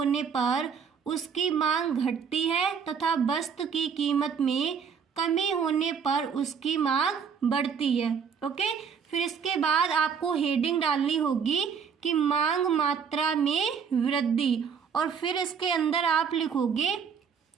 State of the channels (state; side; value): quieter; left; 6.7 dB